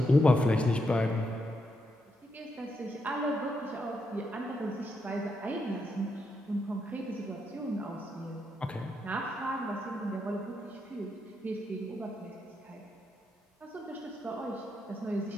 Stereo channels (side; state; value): both; normal; correlation 0.81